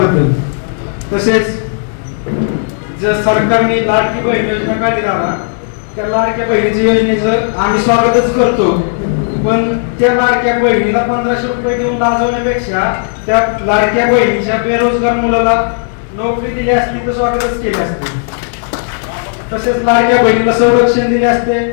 तसेच जर सरकारने लाडकी बहीण योजना काढली दादा, त्या लाडक्या बहिणीच्या योजनेचं आम्ही स्वागतच करतो, पण त्या लाडक्या बहिणीला 1500 रुपये देऊन लाजवण्यापेक्षा त्या लाडक्या बहिणीच्या बेरोजगार मुलाला नोकरी दिली असती तर स्वागतच केले असते. तसेच लाडक्या बहिणीला संरक्षण दिले असते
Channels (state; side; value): silent; right; digital silence